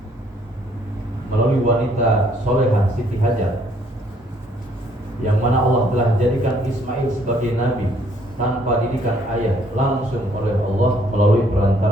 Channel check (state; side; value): normal; both; correlation 0.65